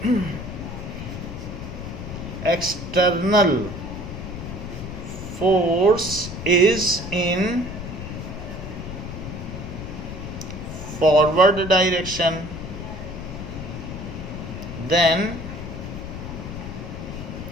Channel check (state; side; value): noise; left; rumble, 8 dB below the sound